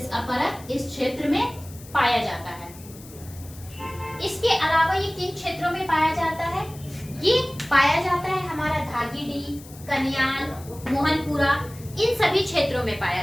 परत इस क्षेत्र में पाया जाता है। इसके अलावा ये किन क्षेत्रों में पाया जाता है? ये पाया जाता है हमारा धागीडीह, कन्याल, मोहनपुरा, इन सभी क्षेत्रों में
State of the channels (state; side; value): noise; left; hiss, 19 dB below the sound